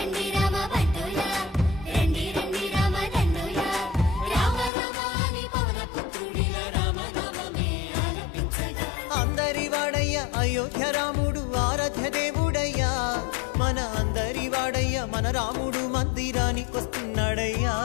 రామ బంటులా, రండి రండి రామ దండులా, రామ రామ నీ పవన పుత్రుడిలా రామ నామమే ఆలపించగా. అందరి వాడయ్య అయోధ్య రాముడు ఆరాధ్య దేవుడయ్యా, మన అందరి వాడయ్య మన రాముడు మందిరానికొస్తున్నాడయ్యా.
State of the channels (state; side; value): drops out; right; at 4.7 s